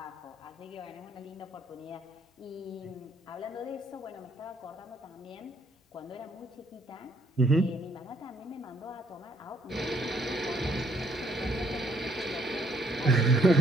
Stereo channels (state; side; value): normal; both; correlation 0.68